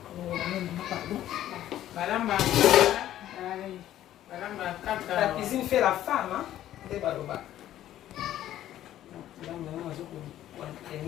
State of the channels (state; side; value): quieter; right; 12.6 dB